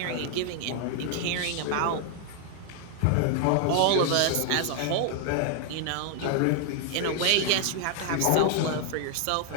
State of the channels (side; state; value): both; different; correlation 0.00